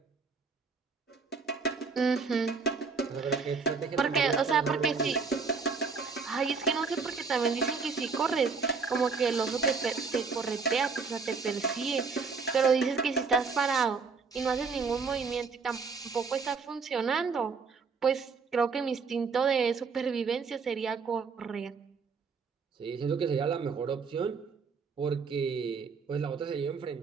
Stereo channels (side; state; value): left; quieter; 5.0 dB